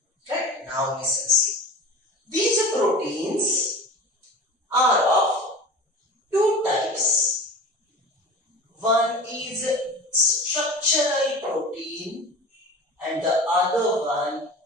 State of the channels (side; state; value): both; normal; correlation 0.35